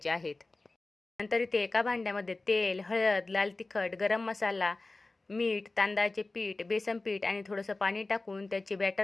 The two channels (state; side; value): quieter; right; 3.2 dB